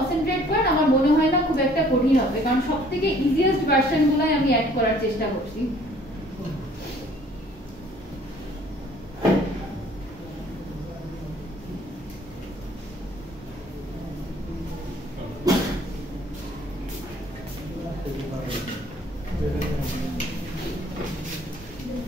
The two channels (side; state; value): both; normal; correlation 0.57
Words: করেন আমার মনে হয় না খুব একটা কঠিন হবে, কারণ সবথেকে ইজিয়েস্ট ভার্সনগুলাই আমি অ্যাড করার চেষ্টা করছি।